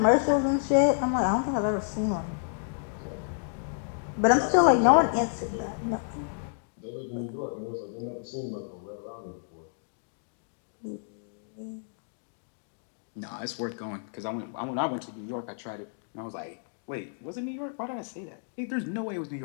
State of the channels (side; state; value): right; silent; digital silence